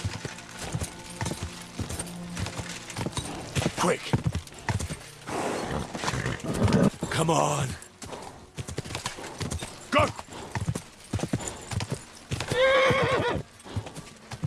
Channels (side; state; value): both; identical; correlation 1.00